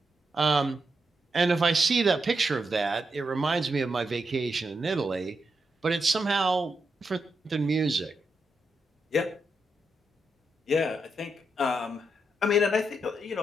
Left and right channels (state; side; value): normal; both; correlation 0.84